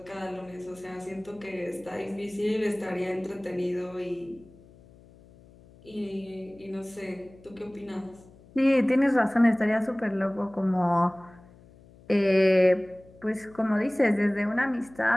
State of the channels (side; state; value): left; noise; hum, 24 dB below the sound